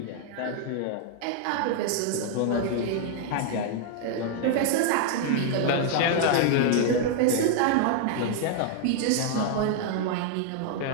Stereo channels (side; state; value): both; different; correlation 0.00